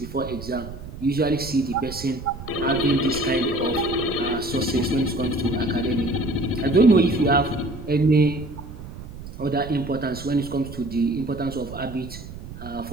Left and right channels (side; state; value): right; noise; rumble, 12 dB below the sound